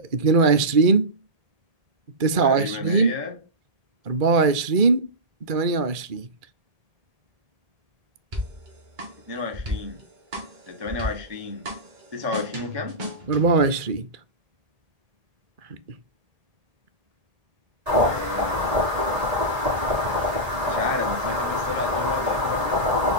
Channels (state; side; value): late; left; 1.8 ms